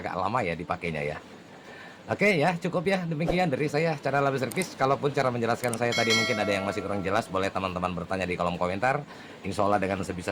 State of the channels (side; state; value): both; identical; correlation 1.00